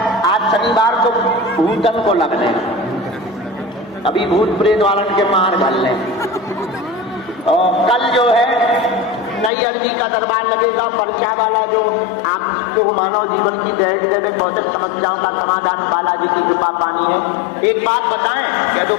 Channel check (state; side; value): drops out; right; at 9.5 s